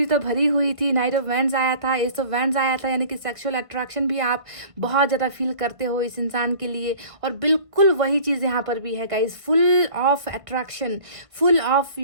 तो भरी हुई थी। नाइट ऑफ वैंड्स आया था, एस ऑफ वैंड्स आया था, यानी कि सेक्सुअल अट्रैक्शन भी आप बहुत ज़्यादा फील करते हो इस इंसान के लिए। और बिल्कुल वही चीज़ यहाँ पर भी है guys, full of attraction, full of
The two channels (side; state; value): left; late; 1.5 ms